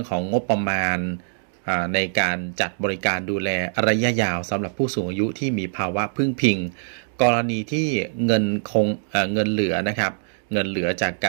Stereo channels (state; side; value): silent; left; digital silence